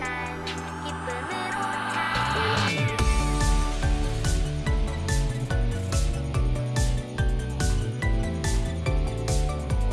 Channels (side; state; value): both; identical; correlation 1.00